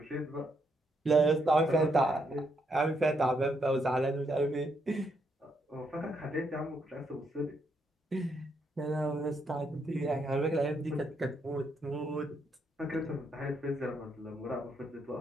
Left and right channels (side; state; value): both; normal; correlation 0.76